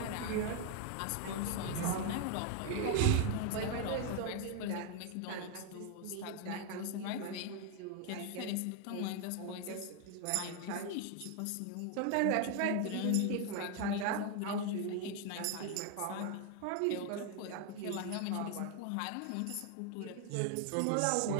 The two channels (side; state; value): both; different; correlation 0.00